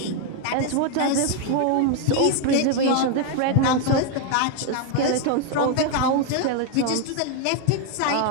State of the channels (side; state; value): both; different; correlation 0.01